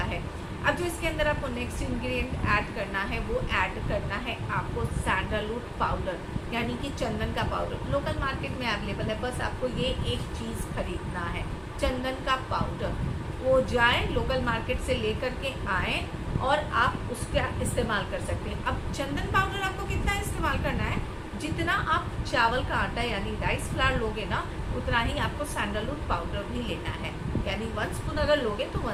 है। अब जो इसके अंदर आपको नेक्स्ट इंग्रेडिएंट ऐड करना है, वो ऐड करना है आपको सैंडलवुड पाउडर, यानी कि चंदन का पाउडर। लोकल मार्केट में अवेलेबल है, बस आपको ये एक चीज़ खरीदना है, चंदन का पाउडर। वो जाए लोकल मार्केट से लेकर के आए और आप उसका इस्तेमाल कर सकते हैं। अब चंदन पाउडर आपको कितना इस्तेमाल करना है, जितना आप चावल का आटा यानी राइस फ्लावर लोगे ना, उतना ही आपको सैंडलवुड पाउडर भी लेना है। यानी 1 स्पून अगर लोगे तो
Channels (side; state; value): both; identical; correlation 1.00